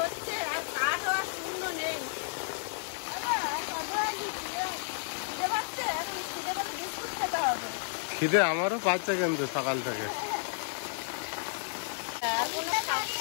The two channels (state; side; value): silent; right; digital silence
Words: আর কাঠও আর শূন্য নেই। খিদে পাচ্ছে, এখন খিদে পেলে বিস্কুট খেতে হবে। খিদে আমারও পাচ্ছে কিন্তু সকাল থেকে।